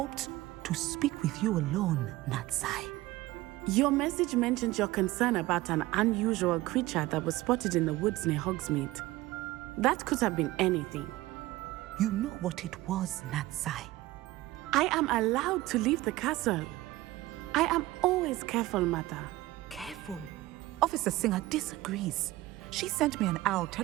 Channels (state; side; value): quieter; left; 17.8 dB